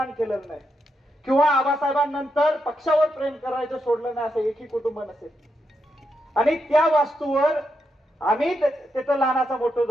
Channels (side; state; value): both; normal; correlation 0.83